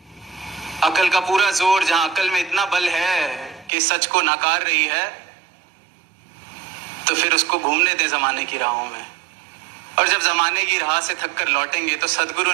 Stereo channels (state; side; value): drops out; left; at 3.7 s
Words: अकल का पूरा जोर, जहां अकल में इतना बल है कि सच को नकार रही है, तो फिर उसको घूमने दे जमाने की राहों में। और जब जमाने की राह से थक कर लौटेंगे तो सदगुरु